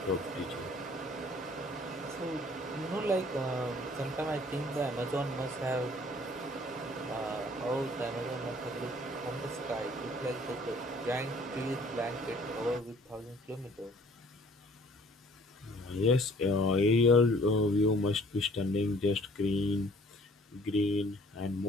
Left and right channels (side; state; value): both; normal; correlation 0.56